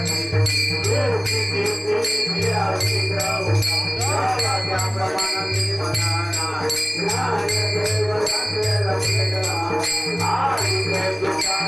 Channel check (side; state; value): both; identical; correlation 1.00